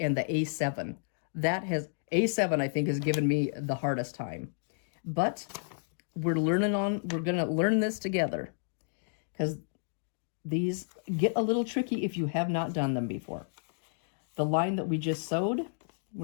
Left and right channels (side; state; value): right; silent; digital silence